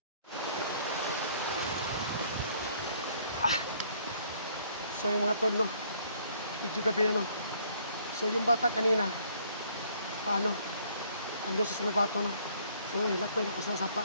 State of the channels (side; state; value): both; inverted; correlation -0.62